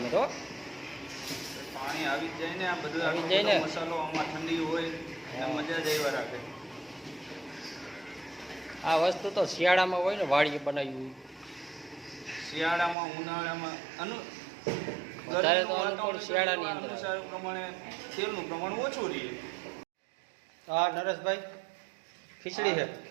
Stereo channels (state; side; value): drops out; left; at 13.0 s